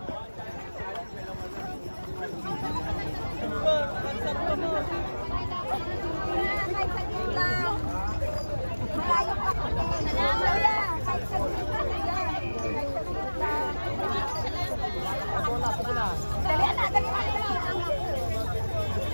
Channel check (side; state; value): both; inverted; correlation -1.00